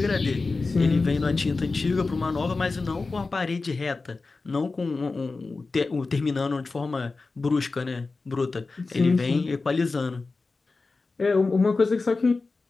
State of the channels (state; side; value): quieter; right; 3.8 dB